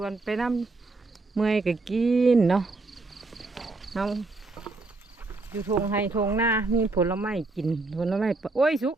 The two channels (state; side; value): quieter; left; 3.4 dB